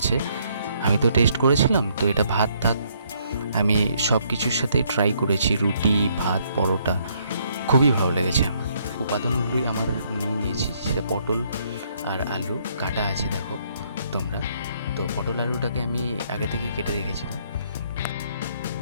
আমি তো টেস্ট করেছিলাম, তো এটা ভাত টাত আমি সব কিছুর সাথে ট্রাই করেছি, রুটি ভাত পরোটা, খুবই ভালো লেগেছে আমার। উপাদানগুলোই আমার নিয়েছি, সেটা পটল আর আলু কাটা আছে দেখো তোমরা। তো পটল আলুটাকে আমি আগে থেকে কেটে রেখেছিলাম।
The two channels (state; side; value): inverted; both; correlation -0.68